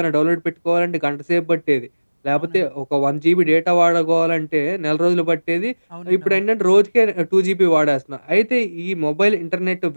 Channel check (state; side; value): inverted; both; correlation -1.00